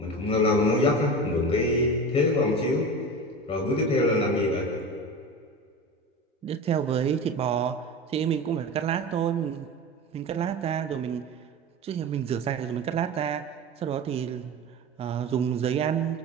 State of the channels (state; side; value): normal; both; correlation 0.29